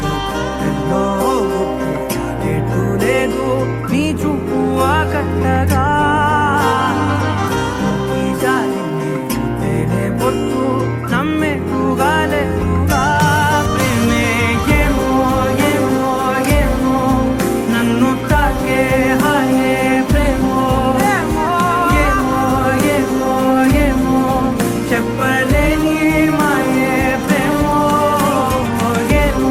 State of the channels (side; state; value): both; identical; correlation 1.00